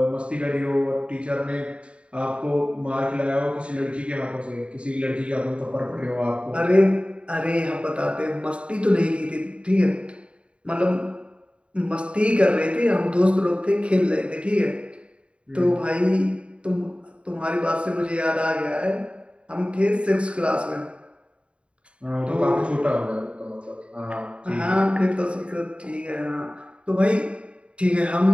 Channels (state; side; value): late; left; 0.059 ms